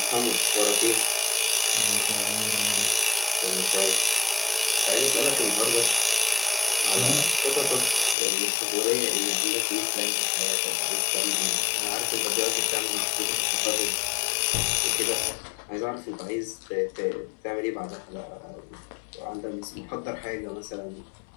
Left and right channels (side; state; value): right; drops out; at 8.2 s